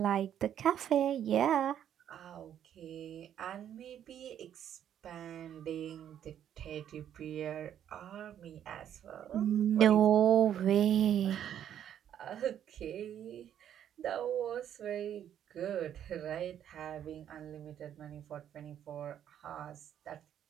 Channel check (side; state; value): left; quieter; 10.0 dB